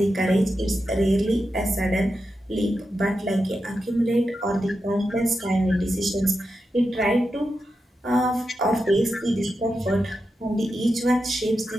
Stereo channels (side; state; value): both; normal; correlation 0.89